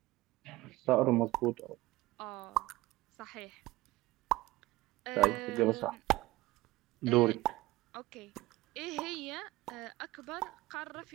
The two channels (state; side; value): quieter; left; 18.5 dB